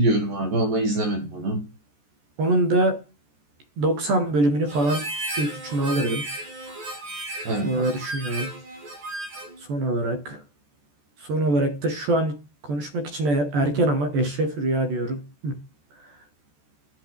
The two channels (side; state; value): left; late; 14 ms